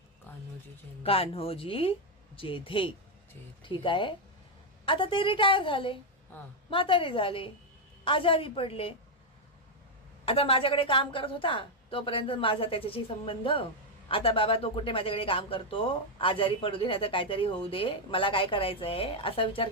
कान्होजी जेधे. ठीक आहे. आता ते रिटायर झाले, म्हातारे झाले, आजारी पडले. आता माझ्याकडे काम करत होता तोपर्यंत माझा त्याच्याशी संबंध. आता बाबा तो कुठे माझ्याकडे काम करतो, आजारी पडू दे, नाही तर काहीतरी होऊ दे, मला काय करायचंय असा विचार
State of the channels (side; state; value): both; normal; correlation 0.01